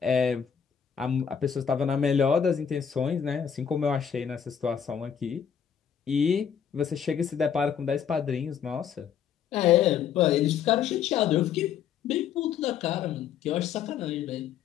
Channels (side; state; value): right; quieter; 8.0 dB